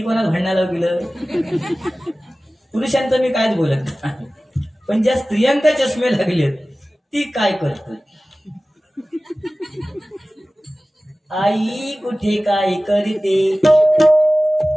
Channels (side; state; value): both; normal; correlation 0.97